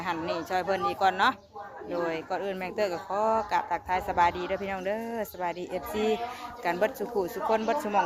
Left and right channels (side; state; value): both; identical; correlation 1.00